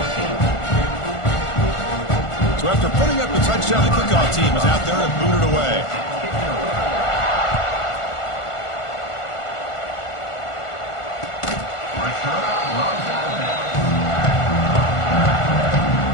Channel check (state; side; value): late; right; 1.5 ms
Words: So after putting up the touchdown, the kickoff team is out there and booted away.